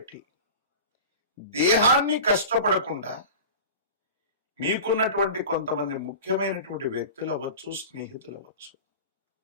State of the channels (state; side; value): inverted; both; correlation -0.34